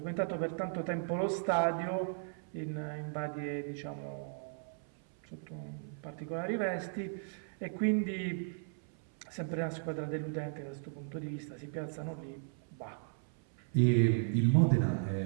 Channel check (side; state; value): left; silent; 54 dB below the other